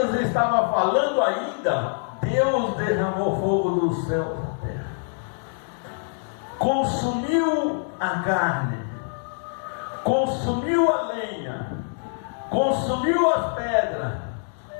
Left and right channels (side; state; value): right; silent; digital silence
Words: estava falando ainda, Deus derramou fogo do céu da terra, consumiu a carne, consumiu a lenha, consumiu as pedras,